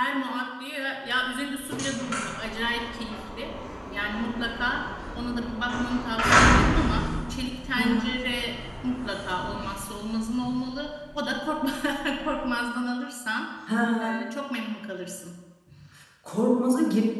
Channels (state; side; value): identical; both; correlation 1.00